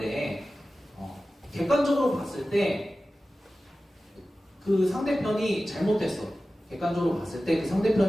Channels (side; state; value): both; normal; correlation 0.95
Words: 객관적으로 봤을 때 그 상대편이 잘못했어. 객관적으로 봤을 때 그